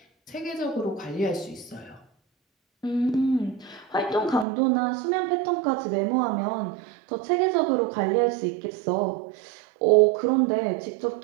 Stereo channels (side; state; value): left; drops out; at 4.5 s